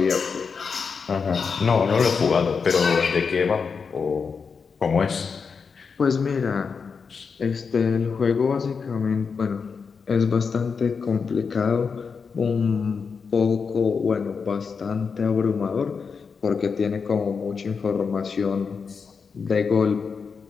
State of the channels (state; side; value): quieter; right; 5.5 dB